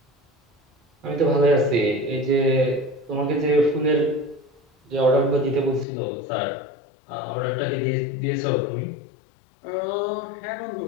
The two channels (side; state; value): right; drops out; at 5.9 s